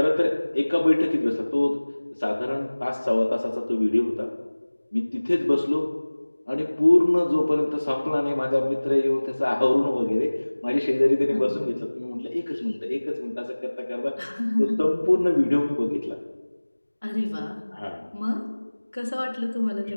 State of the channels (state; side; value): inverted; both; correlation -1.00